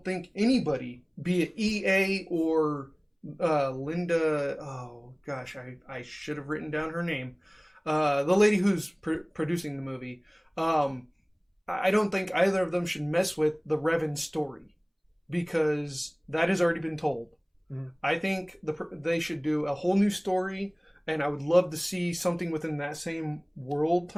think anybody, be it EA or Linda, oh gosh, I should have written down her name, the lady who's producing the movie, I don't think either of them should mess with the Revan story, because that has already been told. I think they should do a whole new story, and I would love to see something within that same world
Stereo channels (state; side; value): identical; both; correlation 1.00